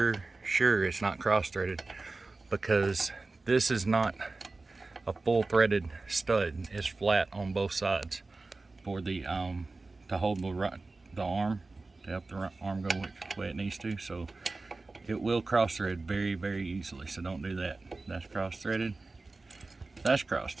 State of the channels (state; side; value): quieter; left; 3.5 dB